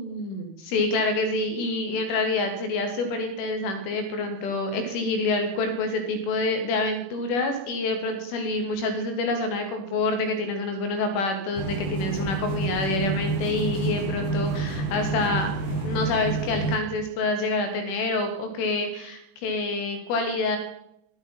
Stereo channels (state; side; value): late; right; 21 ms